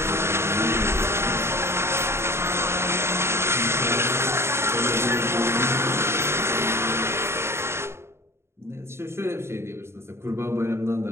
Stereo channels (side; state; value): left; late; 0.12 ms